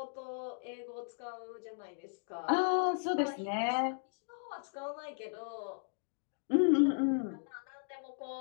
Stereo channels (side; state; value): right; silent; digital silence